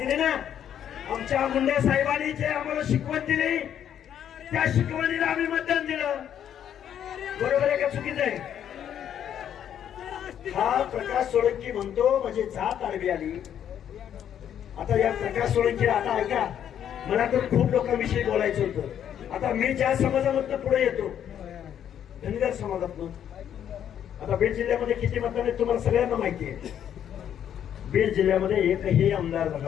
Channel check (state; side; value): quieter; right; 9.7 dB